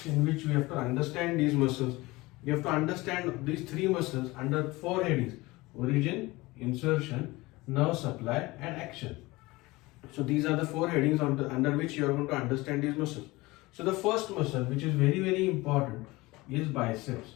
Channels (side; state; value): right; quieter; 21.3 dB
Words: in which we have to understand these muscles. You have to understand these three muscles under four headings: origin, insertion, nerve supply and action. So these are the four headings under which you are going to understand these muscles. So the first muscle, which is very important, is biceps.